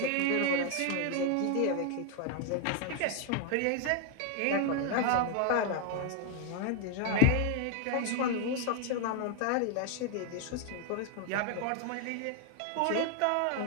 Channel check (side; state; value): both; different; correlation 0.00